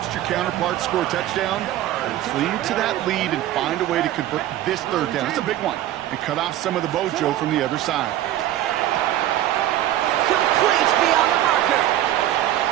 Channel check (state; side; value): quieter; left; 13.2 dB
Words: your counterpart score a touchdown. Cling to that lead and find a way to convert this 3rd down. It's a big one. And cut off some of the mojo from the other side. Complete beyond the marker.